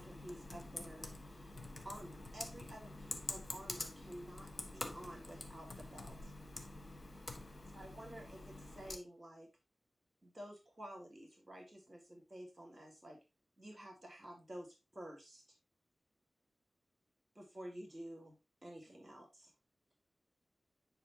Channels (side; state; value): both; normal; correlation 0.94